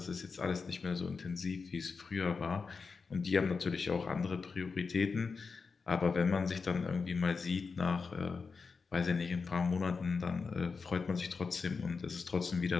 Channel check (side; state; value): right; quieter; 4.9 dB